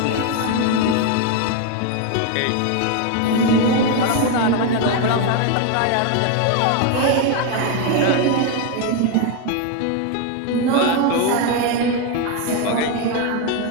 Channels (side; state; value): both; different; correlation 0.01